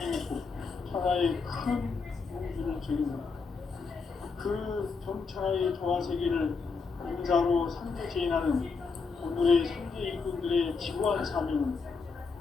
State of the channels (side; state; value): right; quieter; 4.8 dB